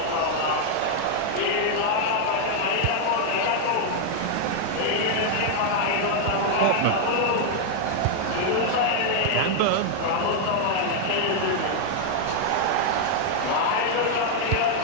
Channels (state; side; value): different; both; correlation 0.00